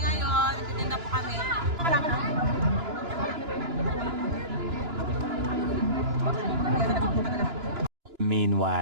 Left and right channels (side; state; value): left; late; 2.9 ms